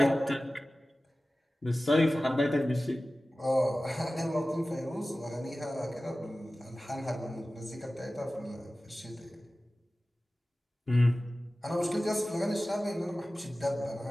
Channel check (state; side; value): normal; both; correlation 0.96